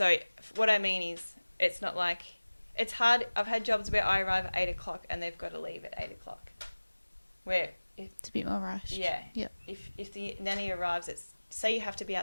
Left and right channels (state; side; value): inverted; both; correlation -1.00